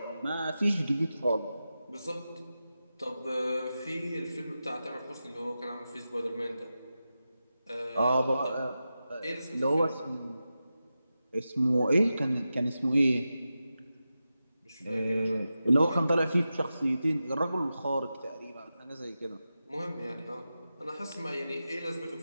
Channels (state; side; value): inverted; both; correlation -0.92